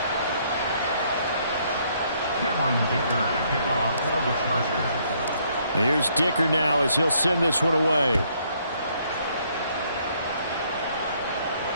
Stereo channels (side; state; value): both; inverted; correlation -0.68